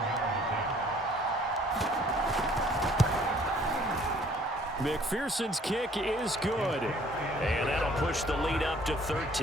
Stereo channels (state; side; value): normal; both; correlation 0.58